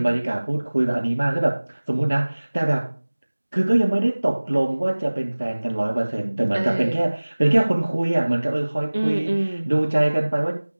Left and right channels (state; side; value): inverted; both; correlation -1.00